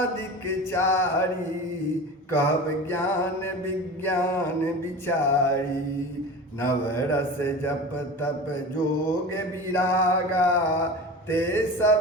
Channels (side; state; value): both; normal; correlation 0.32